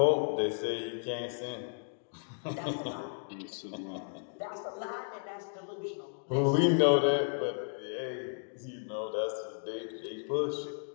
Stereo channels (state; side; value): silent; right; digital silence